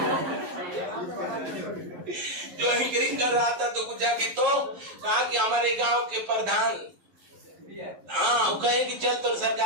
जो एंकरिंग कर रहा था तो पूछा कि तो कहा कि हमारे गांव के प्रधान, हाँ, वो कहे कि चल तो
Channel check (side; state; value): left; late; 11 ms